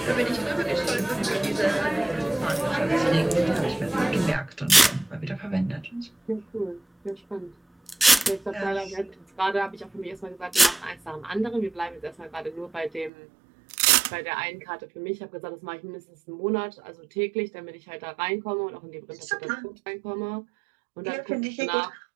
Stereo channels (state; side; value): drops out; left; at 13.1 s